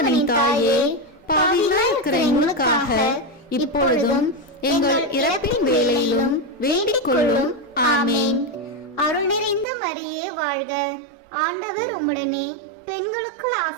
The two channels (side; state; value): left; drops out; at 9.7 s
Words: தாயே, பாவிகளாய் இருக்கிற எங்களுக்காக இப்பொழுதும் எங்கள் இறப்பின் வேளையிலும் வேண்டிக் கொள்ளும். ஆமேன். அருள் நிறைந்த மரியே வாழ்க, ஆண்டவர் உம்முடனே, பெண்களுக்குள்